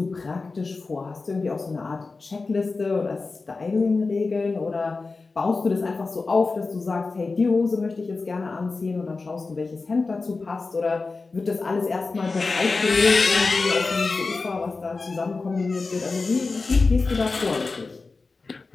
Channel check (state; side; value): quieter; right; 4.0 dB